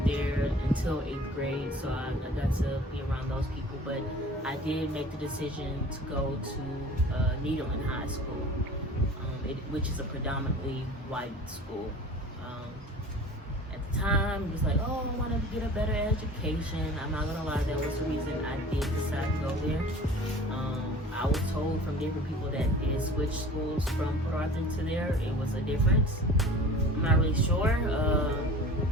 there until 8th grade, so I got to be around those people. But I did make the decision to go to Nederland High School, which is a predominantly white school. At the time, it was like, oh, I want to get a better education. I'm not gonna lie, that was the reason I did decide to go there. I was told from different people that did switch schools from Port Arthur to there, it was a difference. I'm not really sure.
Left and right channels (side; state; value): both; normal; correlation 0.42